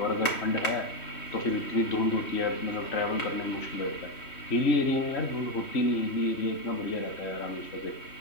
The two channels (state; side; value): late; right; 3.1 ms